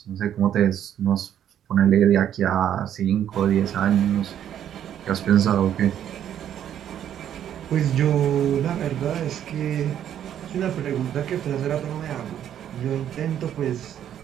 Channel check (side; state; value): left; quieter; 10.2 dB